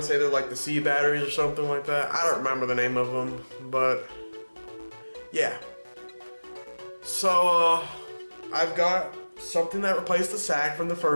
to say they're like the C batteries or something like that. I don't remember the name of them, but yeah. So I've got something that replaced the sack from the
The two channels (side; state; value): both; inverted; correlation -1.00